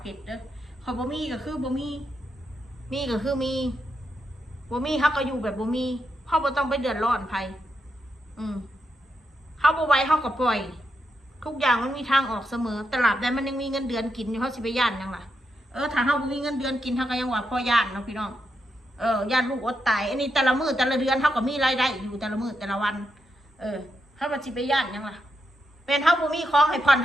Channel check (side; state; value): both; normal; correlation 0.83